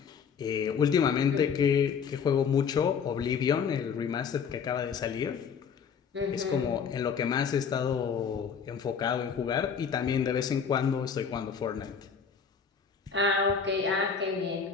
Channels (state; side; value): quieter; right; 6.5 dB